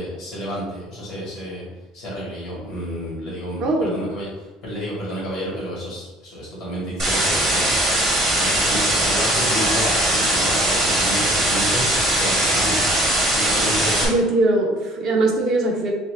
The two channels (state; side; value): normal; both; correlation 0.53